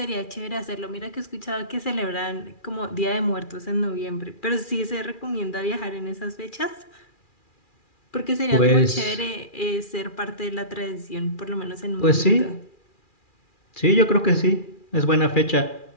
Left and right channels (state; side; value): late; right; 2.4 ms